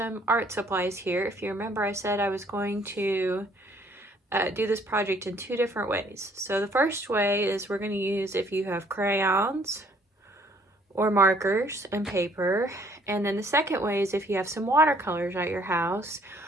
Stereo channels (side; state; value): both; normal; correlation 0.62